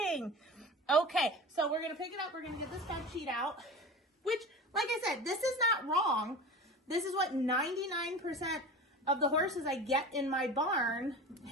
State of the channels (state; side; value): normal; both; correlation 0.33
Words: Okay, so we're going to pick it up. We're going to get this bed sheet out, which, like I said, this is not wrong. This is what 99% of the horses I get in my barn